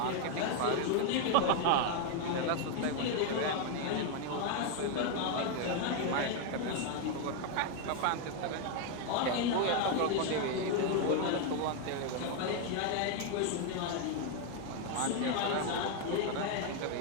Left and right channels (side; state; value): both; different; correlation 0.01